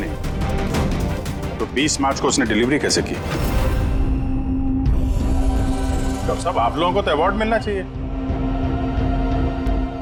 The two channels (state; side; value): identical; both; correlation 1.00